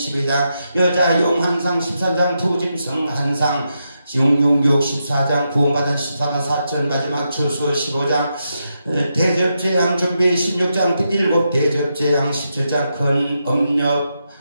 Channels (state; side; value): inverted; both; correlation -0.84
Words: 여자 용한상 14장 두짐승 한상 666 14장 구원받은 14만 4천 마지막 추수 15장 대접재앙 준비 16장 7 대접재앙 17장 큰 음료